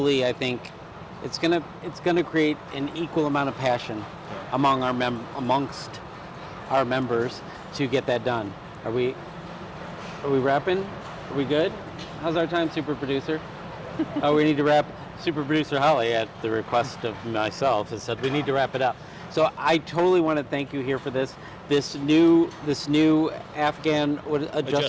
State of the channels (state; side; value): identical; both; correlation 1.00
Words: I think, it's gonna create an equal amount of passion amongst our members to get that done. Are we wrapping? Are we good? How's our time, super producer? Oh, we need to wrap. Super producer Holly, at the request of myself, has said we need to wrap it up. So I totally want to thank you here for this new Afghan